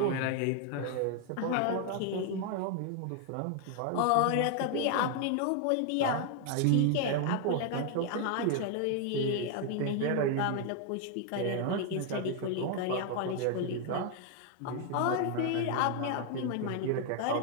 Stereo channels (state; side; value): different; both; correlation 0.00